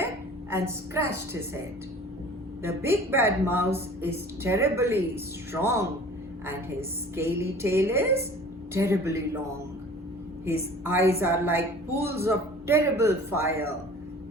and scratched his head. The big bad mouse is terribly strong and his scaly tail is terribly long. His eyes are like pools of terrible fire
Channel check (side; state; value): both; normal; correlation 0.45